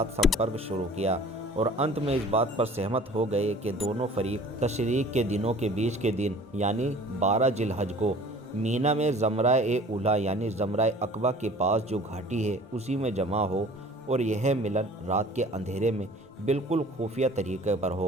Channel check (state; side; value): normal; both; correlation 0.48